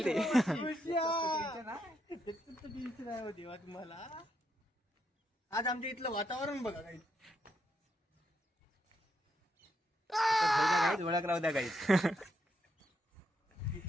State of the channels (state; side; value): normal; both; correlation 0.79